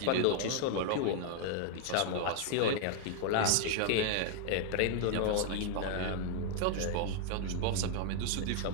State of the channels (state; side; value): different; both; correlation 0.00